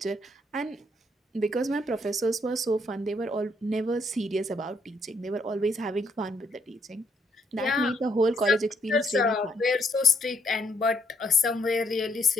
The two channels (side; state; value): both; normal; correlation 0.72